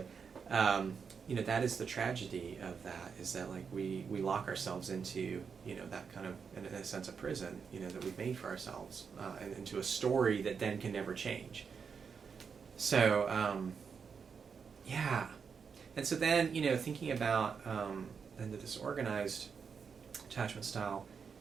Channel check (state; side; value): quieter; left; 6.1 dB